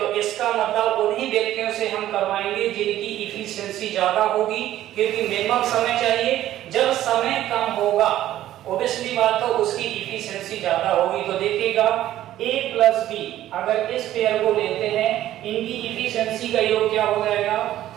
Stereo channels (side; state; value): left; quieter; 13.3 dB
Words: इसका मतलब उन्हीं व्यक्तियों से हम करवाएंगे जिनकी इफिशिएंसी ज्यादा होगी, क्योंकि मिनिमम समय चाहिए। जब समय कम होगा ऑब्वियसली बात तो उसकी इफिशिएंसी ज्यादा होगी। तो देखिएगा a प्लस बी, अगर इस पेयर को लेते हैं इनकी इफिशिएंसी का योग क्या हो जाएगा?